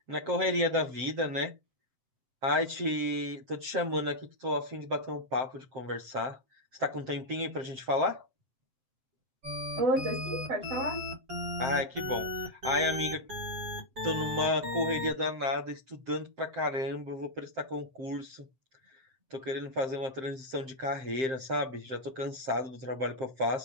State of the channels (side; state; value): left; late; 7.6 ms